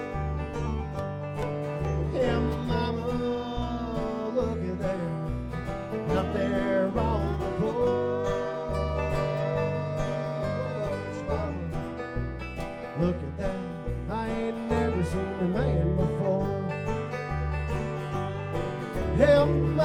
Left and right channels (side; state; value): both; identical; correlation 1.00